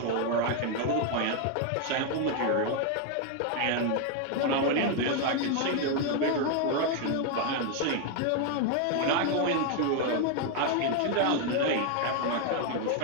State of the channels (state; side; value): different; both; correlation 0.01